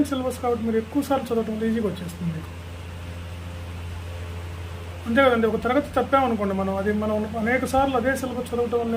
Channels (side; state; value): both; identical; correlation 1.00